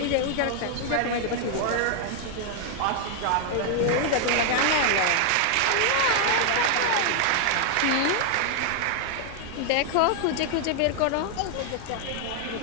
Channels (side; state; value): both; different; correlation 0.00